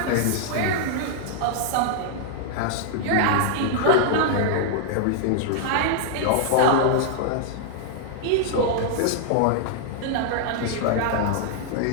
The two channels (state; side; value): different; both; correlation -0.01